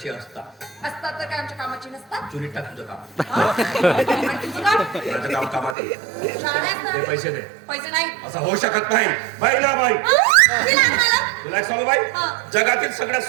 असतात. असतात तर काय आमच्या कामाची नसतात? चुलीत टाक तुझं काम. हा? आणि तुझं काम? माझं काम कामात आहे. शाळेत ना? ते पैसे दे. पैसे नाही. असं होऊ शकत नाही. बाई ना बाई दिला मला? तुला एक सांगू बाई हा. जगातील सगळ्यात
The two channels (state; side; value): drops out; left; at 5.8 s